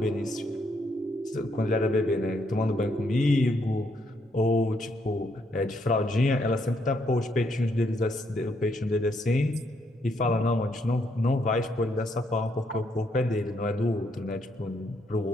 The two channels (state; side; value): normal; both; correlation 0.74